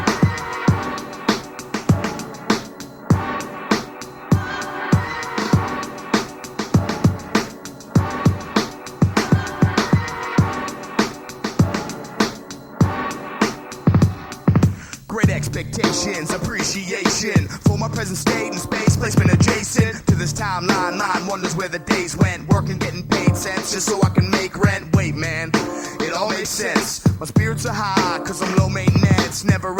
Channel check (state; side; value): identical; both; correlation 1.00